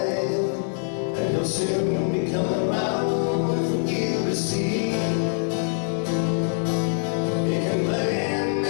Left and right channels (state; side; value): silent; right; digital silence